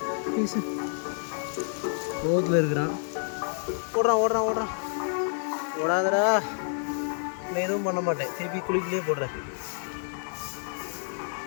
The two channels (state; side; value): silent; right; 59 dB below the other